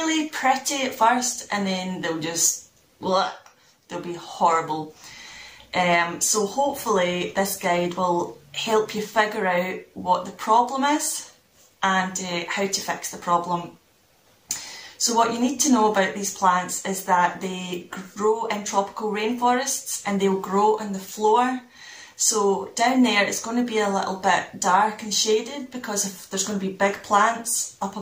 pretty at first and then they'll just, they'll be horrible. So hopefully this guide will help you figure out what the problem is and how to fix the problem. So what you need to know about these plants is that they grow in tropical rainforests and they'll grow on the floor. So down there it's going to be a little bit dark and shaded because there's going to be big plants up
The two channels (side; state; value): both; identical; correlation 1.00